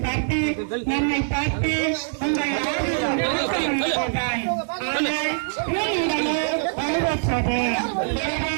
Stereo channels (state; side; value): silent; left; digital silence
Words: பார்த்து நம்மை பார்த்து உங்கள் ஆதிதான் ஆனால் உடனே வலுவற்றது